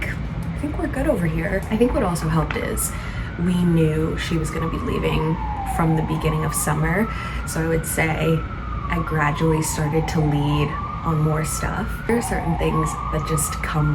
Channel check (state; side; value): identical; both; correlation 1.00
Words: we're good over here. I think what also helped is we knew she was going to be leaving from the beginning of summer, so I would say I gradually started to lead on more stuff. There are certain things that just come